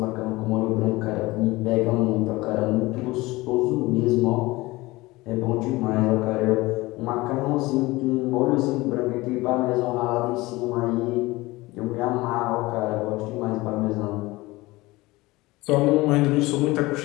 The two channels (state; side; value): quieter; right; 20.7 dB